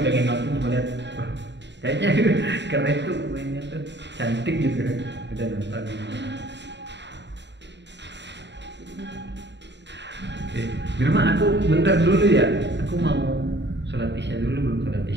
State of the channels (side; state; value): left; late; 0.52 ms